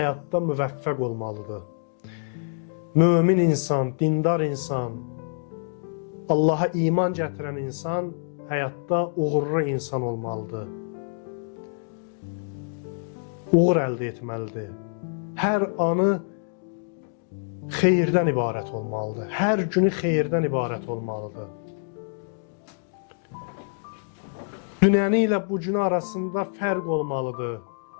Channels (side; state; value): right; silent; digital silence